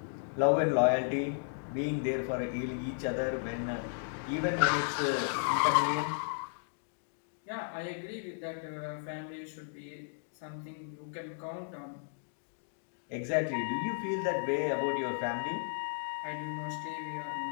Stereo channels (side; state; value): right; silent; digital silence